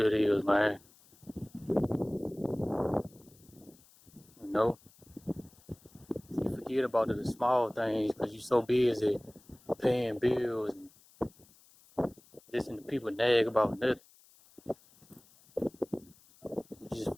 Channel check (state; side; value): noise; left; hiss, 27 dB below the sound